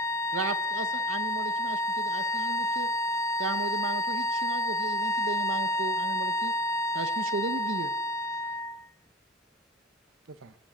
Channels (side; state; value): both; normal; correlation 0.34